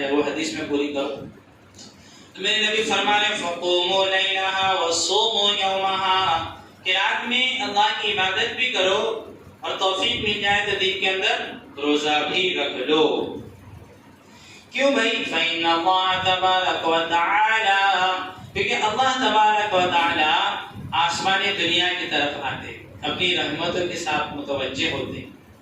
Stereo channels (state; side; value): identical; both; correlation 1.00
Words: وہ حدیث میں پوری کرو، تو میرے نبی فرما رہے فقوموا لیلہا وصوموا یومہا، کہ رات میں اللہ کی عبادت بھی کرو اور توفیق مل جائے تو دن کے اندر روزہ بھی رکھ لو۔ کیوں بھائی؟ فإن اللہ تبارک و تعالی، کیونکہ اللہ تبارک و تعالی آسمان دنیا کی طرف آتے، اپنی رحمتوں کے ساتھ متوجہ ہوتے